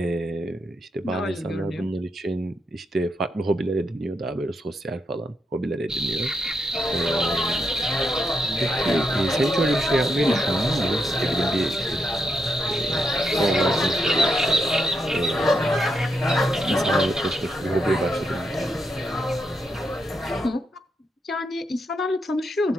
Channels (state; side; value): normal; both; correlation 0.81